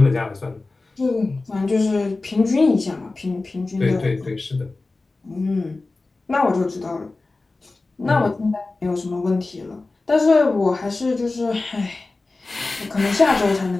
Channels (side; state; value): right; quieter; 3.4 dB